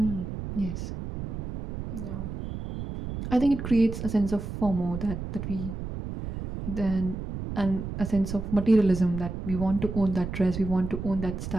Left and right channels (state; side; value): noise; right; rumble, 7 dB below the sound